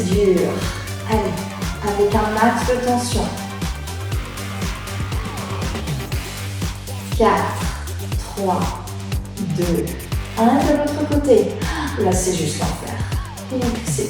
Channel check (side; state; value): both; identical; correlation 1.00